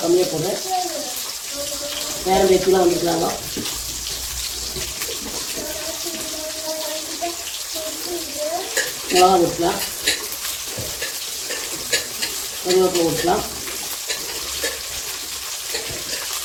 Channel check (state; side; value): identical; both; correlation 1.00